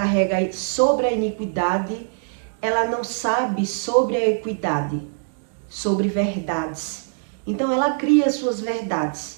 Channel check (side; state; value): left; silent; digital silence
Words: sobre a iniquidade, ela não sabe sobre a equidade, sobre verdades. Então ela cria suas